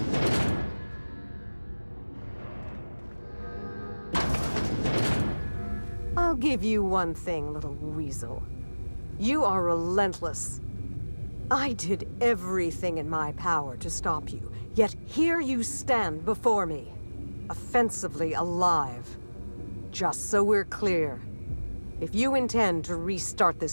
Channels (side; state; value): both; inverted; correlation -1.00